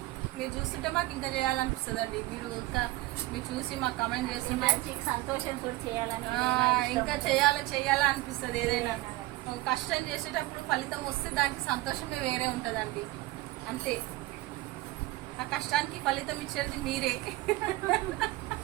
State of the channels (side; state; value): left; quieter; 19.2 dB